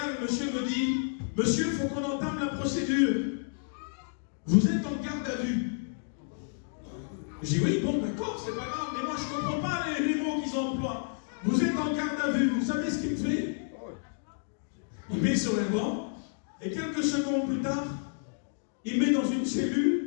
le monsieur me dit, monsieur, il faut qu'on entame la procédure. Vous êtes en garde à vue. Je dis oui, bon, d'accord, c'est pas grave, mais moi je ne comprends pas les mots qu'ils emploient. Vous êtes en garde à vue, vous savez ce qu'il me fait? Il met sur un banc, et quelques secondes plus tard, il met dans une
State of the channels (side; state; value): right; silent; digital silence